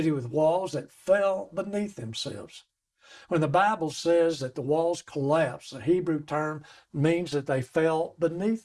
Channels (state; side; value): identical; both; correlation 1.00